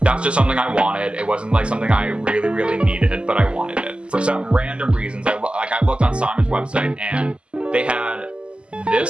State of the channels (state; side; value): late; left; 0.054 ms